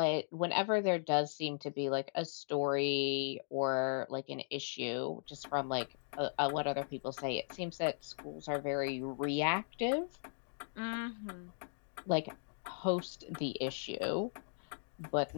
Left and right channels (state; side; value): silent; right; digital silence